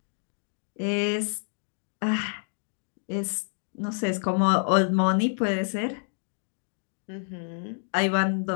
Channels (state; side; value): silent; right; 59 dB below the other